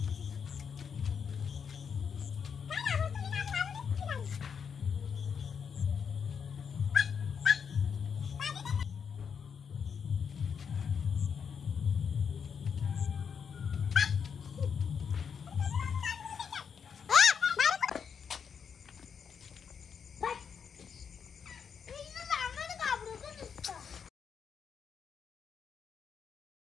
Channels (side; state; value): right; quieter; 6.8 dB